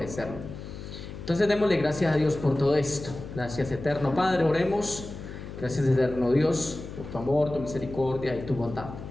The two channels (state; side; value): noise; left; hum, 11 dB below the sound